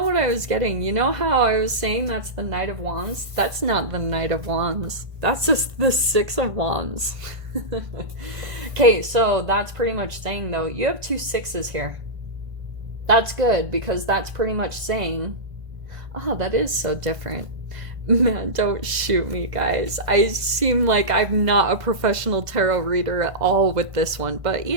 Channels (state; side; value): late; left; 1.5 ms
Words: what I was getting? You know how I was saying that's the Knight of Wands? That's not the Knight of Wands. That's just the 6 of Wands. Okay, so that's pretty much saying, though, you have 2 6s here. That's good, because that's pretty much saying, oh, that is so different. Man, don't shoot me, guys. I seem like I'm not a professional tarot reader at all with this one, but,